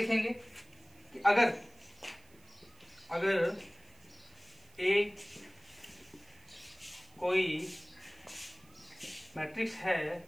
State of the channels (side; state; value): right; noise; hiss, 27 dB below the sound